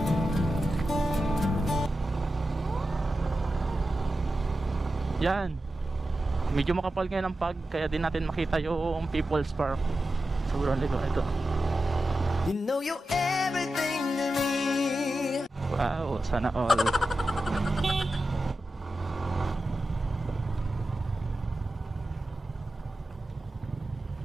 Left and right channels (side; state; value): both; normal; correlation 0.92